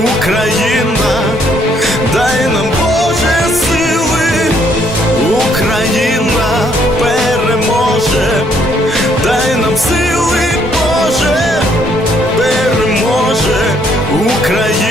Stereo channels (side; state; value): both; normal; correlation 0.68